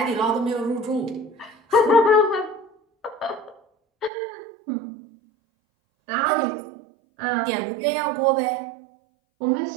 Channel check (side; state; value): left; drops out; at 4.1 s